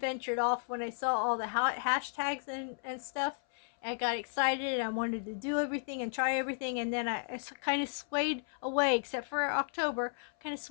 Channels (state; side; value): silent; right; 55 dB below the other